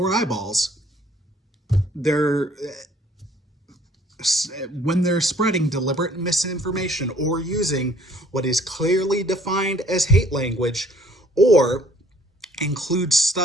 eyeballs, when they're spreading deliberate misinformation or using what is clearly defined as hate language or includes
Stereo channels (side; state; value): both; normal; correlation 0.59